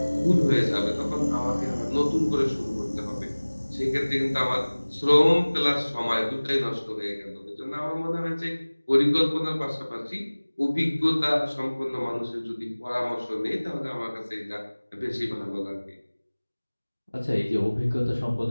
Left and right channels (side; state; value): both; inverted; correlation -1.00